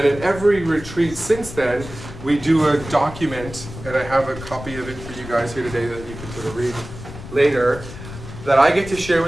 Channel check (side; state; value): left; noise; rumble, 13 dB below the sound